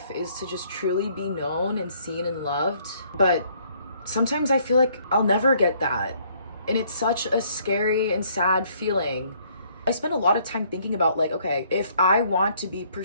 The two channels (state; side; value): inverted; both; correlation -0.64